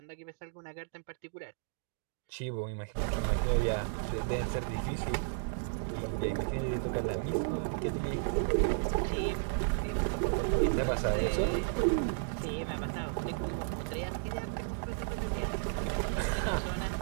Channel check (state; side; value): silent; left; digital silence